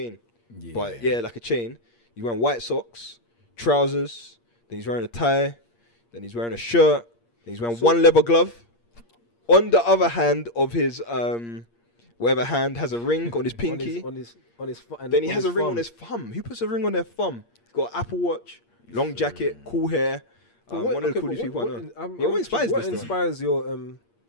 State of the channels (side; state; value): right; late; 8.6 ms